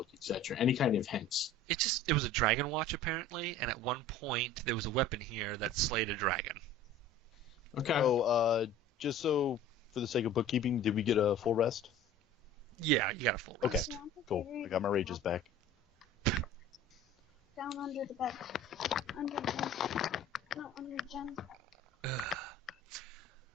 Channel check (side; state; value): both; normal; correlation 0.43